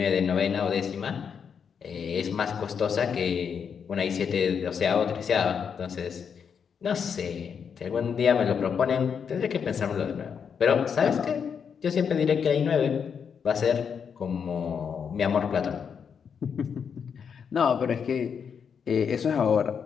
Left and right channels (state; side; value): quieter; right; 6.9 dB